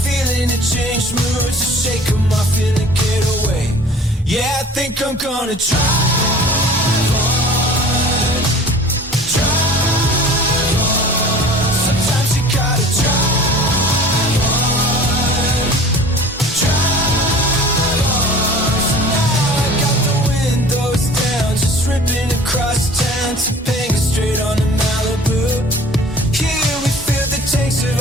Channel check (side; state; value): both; normal; correlation 0.45